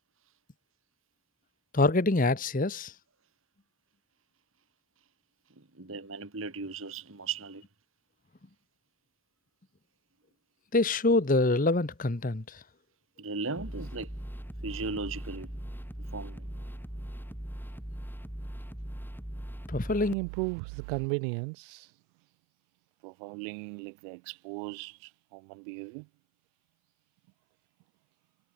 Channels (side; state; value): left; drops out; at 20.2 s